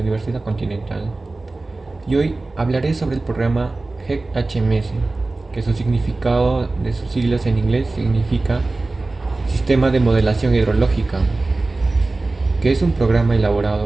Universidad Continental y hoy hablaré sobre el programa GEC-HMS, que su significado de sus siglas en inglés significa Sistema de Modelación Hidrológica, que es un programa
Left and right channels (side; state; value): left; quieter; 3.2 dB